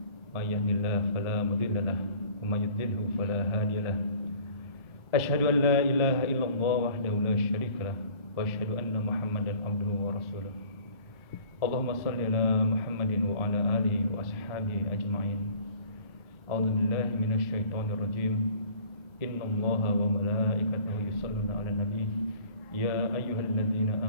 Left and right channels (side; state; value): right; late; 1.4 ms